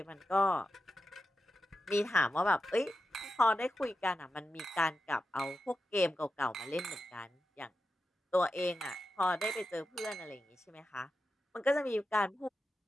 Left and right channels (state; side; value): normal; both; correlation 0.90